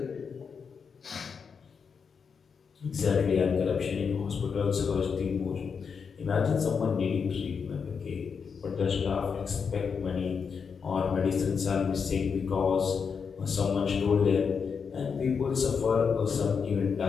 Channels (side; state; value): right; quieter; 6.0 dB